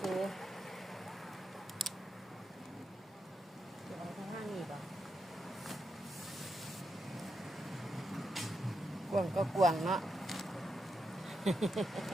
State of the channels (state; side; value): normal; both; correlation 0.84